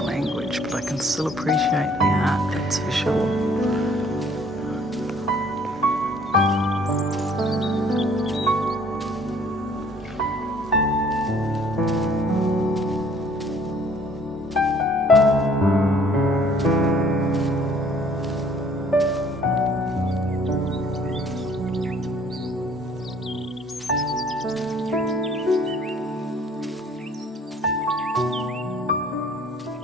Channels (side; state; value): both; normal; correlation 0.57